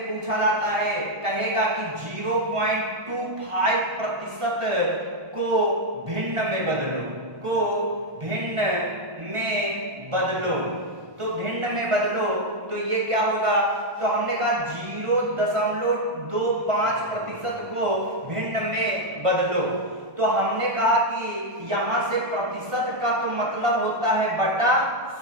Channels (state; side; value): late; left; 1.4 ms